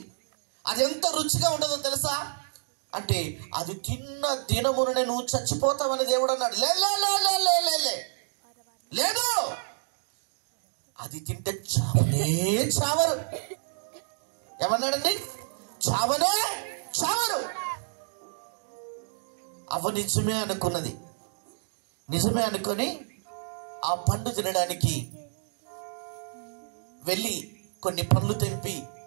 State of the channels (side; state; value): left; silent; digital silence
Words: అది ఎంత రుచిగా ఉంటుందో తెలుసా అంటే, అది తిన్న దినముననే నువ్వు చచ్చిపోతావని దేవుడు అన్నాడు. లేదు, అది తింటే చావనే చావరు. ఏమన్నాడండి? చావనే చావరు. అవ్వ నిజమే అనుకున్నది. నిజమే అనుకొని ఆ పండు తినడానికి వెళ్ళి కొన్ని పండ్లు తెంపి